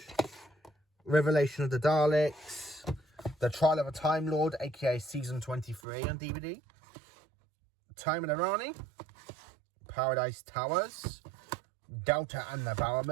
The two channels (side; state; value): left; drops out; at 5.8 s